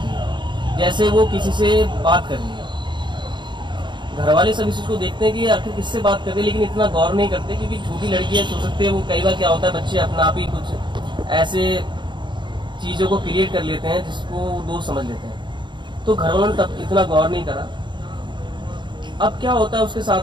है। जैसे वो किसी से बात कर रही है। घर वाले सब इस चीज़ को देखते हैं कि आखिर किससे बात करते हैं, लेकिन इतना गौर नहीं करते क्योंकि छोटी लड़कियां हो सकती है, वो कई बार क्या होता है बच्चे अपना आप ही कुछ ऐसे चीज़ों को क्रिएट कर लेते हैं जिसको दोस्त समझ लेते हैं। तो घर वालों ने तब इतना गौर नहीं करा। अब क्या होता है उसके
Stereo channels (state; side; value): late; left; 0.23 ms